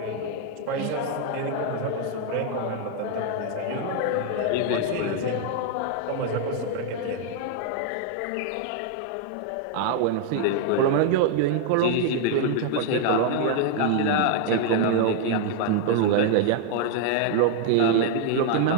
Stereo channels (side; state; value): both; different; correlation 0.00